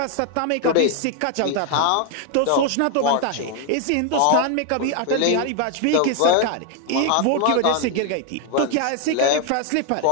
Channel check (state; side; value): different; both; correlation 0.00